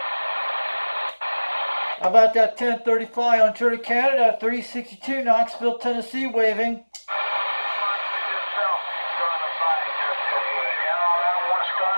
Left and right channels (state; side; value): inverted; both; correlation -1.00